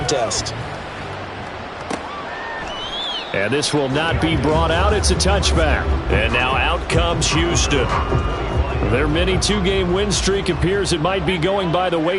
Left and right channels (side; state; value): both; identical; correlation 1.00